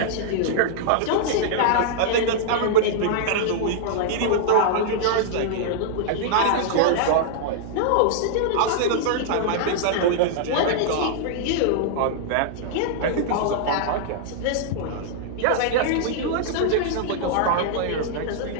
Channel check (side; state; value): both; different; correlation -0.01